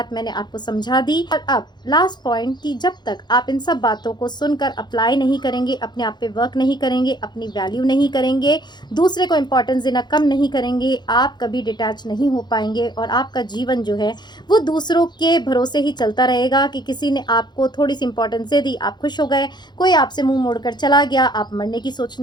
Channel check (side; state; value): right; late; 0.21 ms